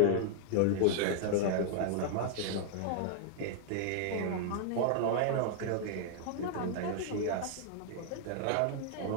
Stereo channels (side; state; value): both; different; correlation -0.01